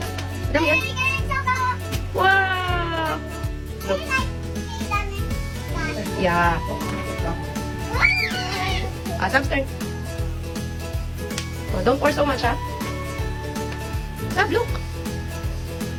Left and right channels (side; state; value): both; identical; correlation 1.00